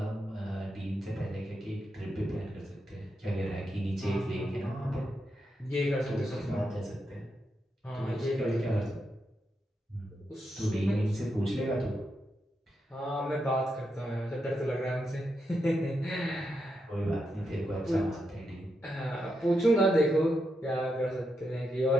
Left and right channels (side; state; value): both; normal; correlation 0.84